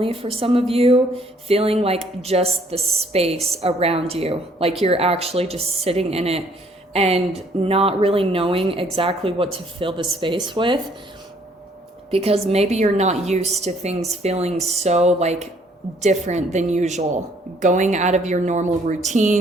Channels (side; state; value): both; normal; correlation 0.63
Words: for some of you, feeling like just the space around you, like you're actually just sitting in it and not really knowing exactly what to fill the space with, because maybe you're not used to things feeling so like different than usual, going out of your normal